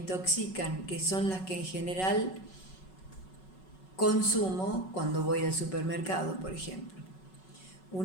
que son las que en general consumo cuando voy al supermercado, por ejemplo.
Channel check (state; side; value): late; right; 5.4 ms